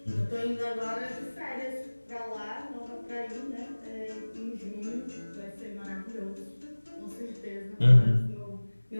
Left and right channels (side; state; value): both; inverted; correlation -1.00